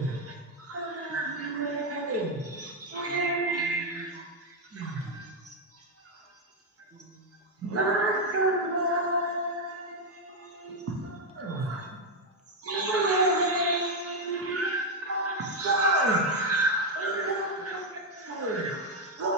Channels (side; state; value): both; normal; correlation 0.03